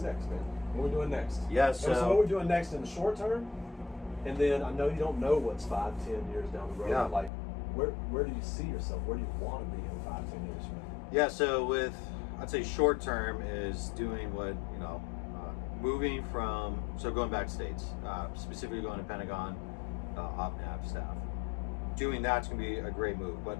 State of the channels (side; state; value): right; drops out; at 7.3 s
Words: next, man? What are we doing next? So what we're doing next in the short term, and then I know you don't know what's 5-10 years down the road. Like, where do you see yourself? Where do you want to be in 5-10 years from now? So I'd say short term is doing what, you know, moving from, so going back to States, specifically going to Pentagon, OPNAV staff. Doing that's going to be a great move,